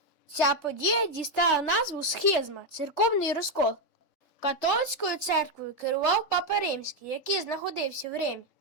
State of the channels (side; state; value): right; late; 3.3 ms